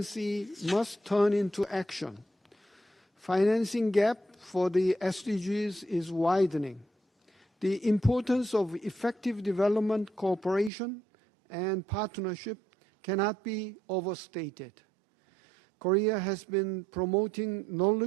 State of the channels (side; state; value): left; drops out; at 10.7 s